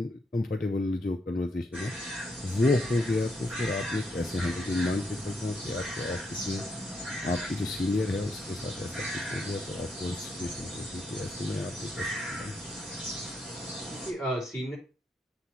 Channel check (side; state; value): both; normal; correlation 0.78